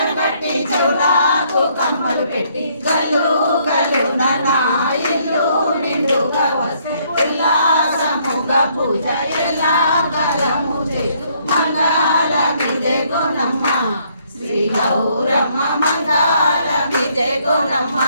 కట్టి చెవులకు కమ్మలు పెట్టి గల్లు గల్లు నా ఇల్లు నిండుగా వస్తే ఉల్లాసముగా పూజ ఎలా కాలము చేతు మంగళమిదే గోనమ్మ శ్రీ గౌరమ్మ మంగళమిదే గోనమ్మ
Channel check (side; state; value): both; inverted; correlation -0.68